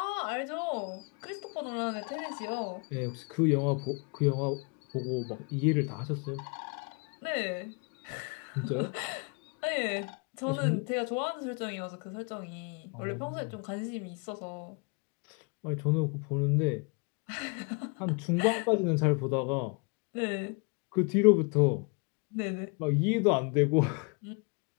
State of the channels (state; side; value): quieter; right; 33.5 dB